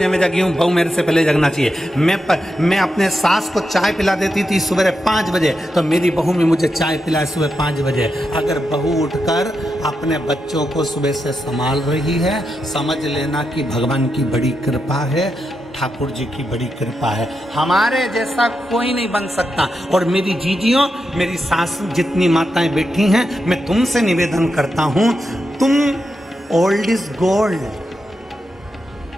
में जगी हूँ, बहू मेरे से पहले जगना चाहिए। मैं अपने सास को चाय पिला देती थी सुबह 5 बजे, तो मेरी बहू भी मुझे चाय पिलाए सुबह 5 बजे। अगर बहू उठकर अपने बच्चों को सुबह से संभाल रही है, समझ लेना कि भगवान की बड़ी कृपा है, ठाकुर जी की बड़ी कृपा है। हमारे जैसा कोई नहीं बन सकता। और मेरी जीजियों, मेरी सास जितनी माताएं बैठी हैं, मैं तुमसे निवेदन करता हूँ, तुम ओल्ड इज गोल्ड।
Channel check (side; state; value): both; normal; correlation 0.86